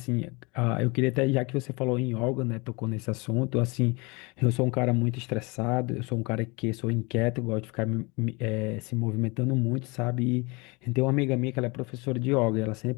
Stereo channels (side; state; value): right; quieter; 27.5 dB